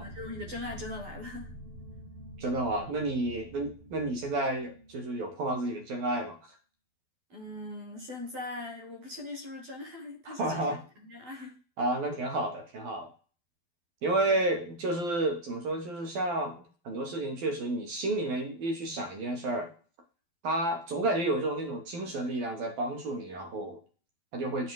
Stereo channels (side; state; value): left; late; 12 ms